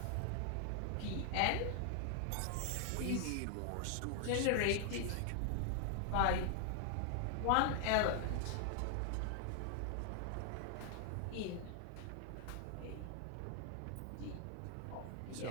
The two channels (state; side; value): different; both; correlation 0.00